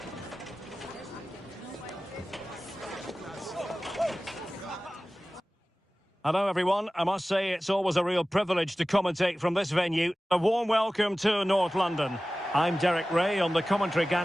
Hello everyone, I must say it's always a real privilege to commentate from this venue. A warm welcome to North London. I'm Derek Ray on the commentary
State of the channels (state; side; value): normal; both; correlation 0.97